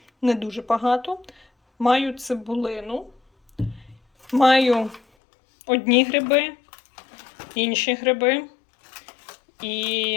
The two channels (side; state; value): right; drops out; at 5.0 s